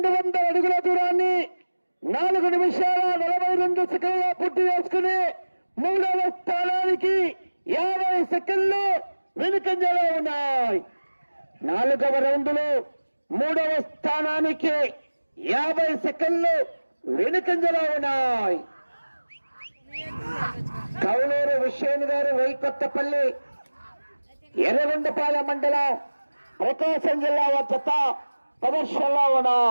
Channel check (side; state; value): both; inverted; correlation -1.00